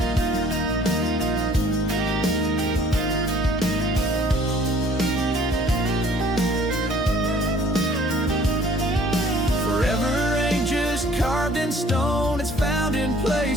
Carved in stone, it's found in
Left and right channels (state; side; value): normal; both; correlation 0.56